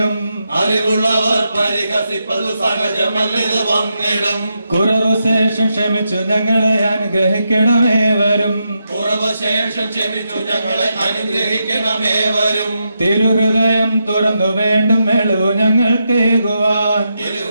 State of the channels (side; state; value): both; inverted; correlation -0.84